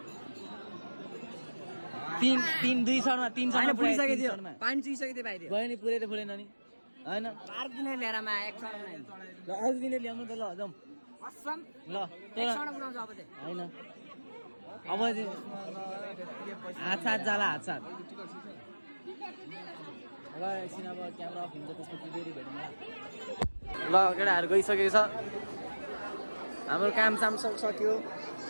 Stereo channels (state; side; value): inverted; both; correlation -1.00